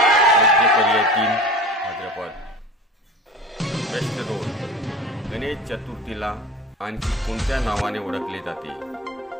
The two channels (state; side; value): normal; both; correlation 0.36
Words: पर्याय 3 भाद्रपद। प्रश्न 2, गणेश चतुर्थीला आणखी कोणत्या नावाने ओळखले जाते?